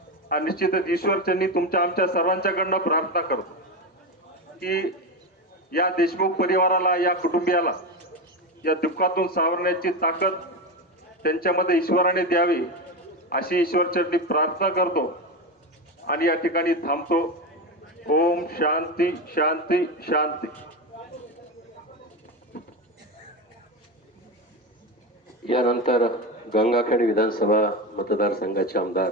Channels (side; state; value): both; normal; correlation 0.17